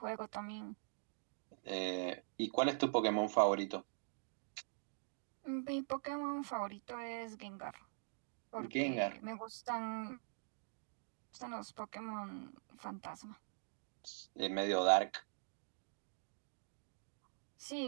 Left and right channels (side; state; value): left; silent; digital silence